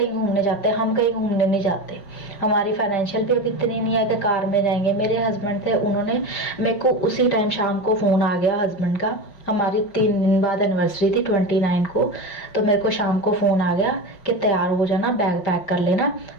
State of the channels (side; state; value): right; late; 5.5 ms